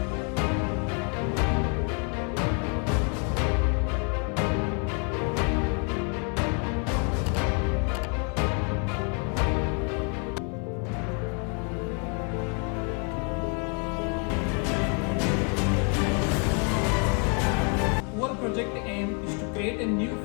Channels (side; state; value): right; quieter; 38.5 dB